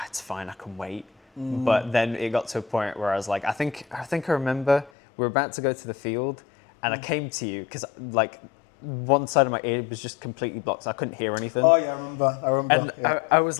it's fine, I can wait. But then it got to a point where I was like, I think I remember we were about to go to the field and I came to you because like one side of my ear was just completely blocked. So I couldn't hear anything. Oh yeah, I remember. And I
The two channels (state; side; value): drops out; right; at 4.9 s